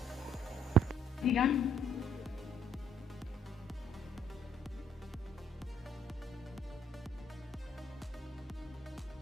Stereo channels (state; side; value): normal; both; correlation 0.66